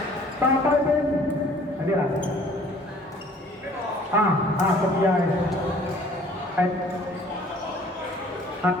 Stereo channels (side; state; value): both; normal; correlation 0.54